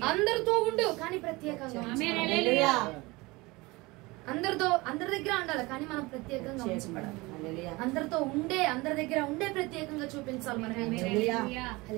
అందరితో ఉండు, కానీ ప్రత్యేకంగా అందరి దగ్గర ఉండాలి, కానీ మనం ప్రత్యేకంగా ఉంచబడాలి. అందరి దగ్గర ఉండే ప్రత్యేకంగా చూపించాలి. మనం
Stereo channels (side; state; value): left; quieter; 22.9 dB